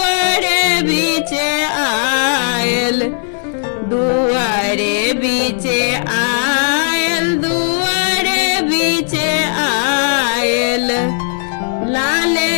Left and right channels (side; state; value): right; silent; 69 dB below the other